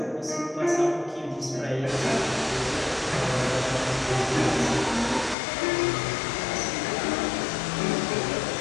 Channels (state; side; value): drops out; right; at 5.4 s